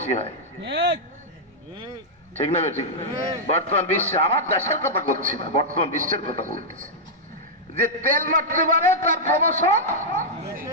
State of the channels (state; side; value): normal; both; correlation -0.07